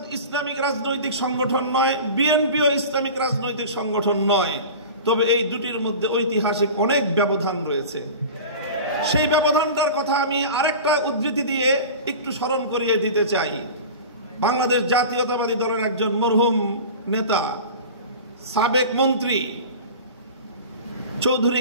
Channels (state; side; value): inverted; both; correlation -0.35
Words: ইসলামিক রাজনৈতিক সংগঠন নয়, বিএনপিও ইসলামিক রাজনৈতিক সংগঠন নয়, তবে এই দুটির মধ্যে ঐতিহাসিক অনেক ব্যবধান রয়েছে। সেই ব্যবধানটার কথা আমি আরেকটা উদ্ধৃতি দিয়ে একটু স্মরণ করিয়ে দিতে চাই। বাংলাদেশ জাতীয়তাবাদী দলের একজন মরহুম নেতা, সাবেক মন্ত্রী চৌধুরী